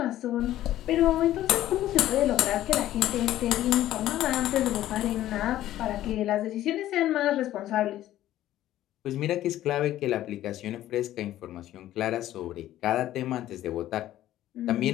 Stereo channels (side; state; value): right; quieter; 13.6 dB